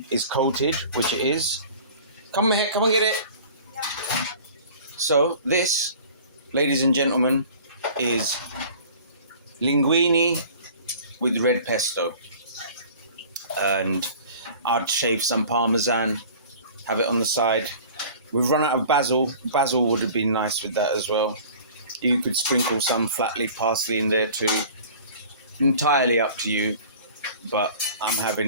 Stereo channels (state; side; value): inverted; both; correlation -0.45